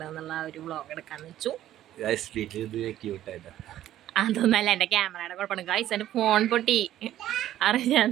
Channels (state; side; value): quieter; left; 12.7 dB